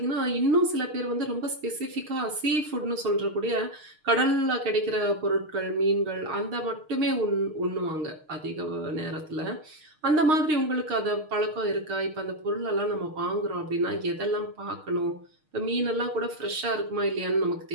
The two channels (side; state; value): left; late; 6.5 ms